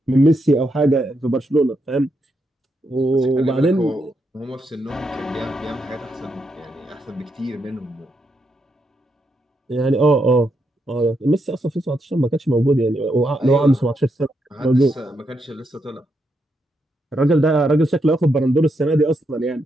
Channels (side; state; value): both; normal; correlation 0.81